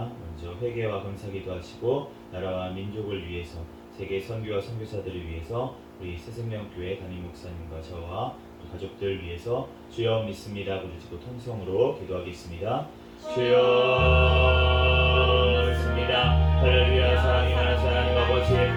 먼저 회개와 감사기도 하시고 나라와 민족을 위해서 세계 선교와 선교사들을 위해서 우리 새생명교회 담임 목사님과 저와 가족들 위해서 주여 믿습니다 부르짖고 통성으로 기도하겠습니다. 주여 믿습니다. 할렐루야. 사랑이 많으신 하나님 아버지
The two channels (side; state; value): both; identical; correlation 1.00